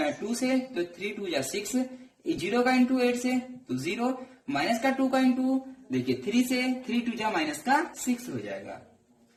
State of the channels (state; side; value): identical; both; correlation 1.00